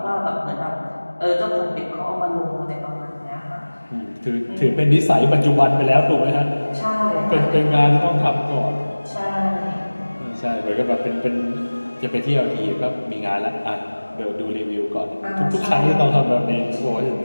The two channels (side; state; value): both; inverted; correlation -1.00